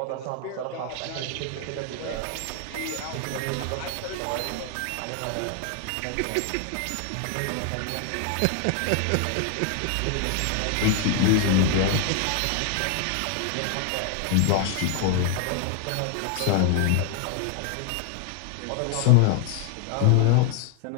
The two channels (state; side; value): different; both; correlation 0.00